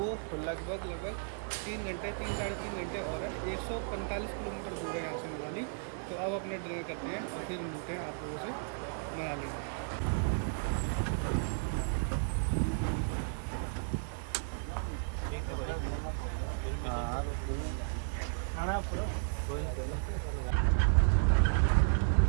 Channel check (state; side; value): silent; left; 55 dB below the other